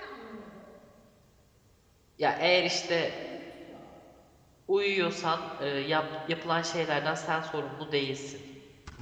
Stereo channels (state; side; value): identical; both; correlation 1.00